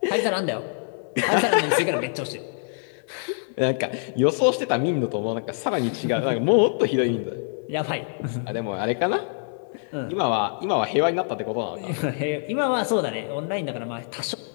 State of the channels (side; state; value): right; silent; 60 dB below the other